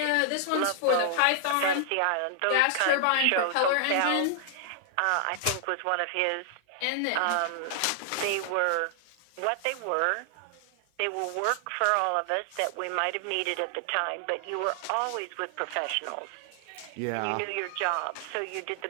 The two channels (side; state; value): both; different; correlation 0.00